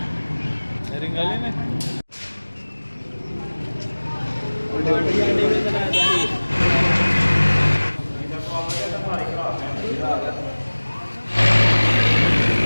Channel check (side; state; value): both; inverted; correlation -1.00